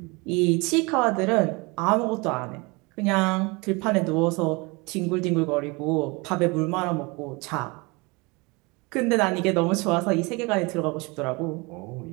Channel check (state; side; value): quieter; left; 26.8 dB